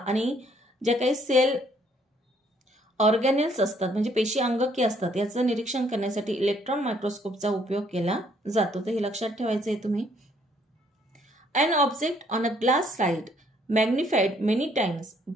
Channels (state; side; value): normal; both; correlation 0.65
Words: जे काही सेल ऑर्गॅनेल्स असतात म्हणजे पेशी अंगके असतात याचं निरीक्षण करण्यासाठी इलेक्ट्रॉन मायक्रोस्कोपचा उपयोग केला जातो. तर हे लक्षात ठेवायचं आहे तुम्ही. An object on a glass slide magnified many times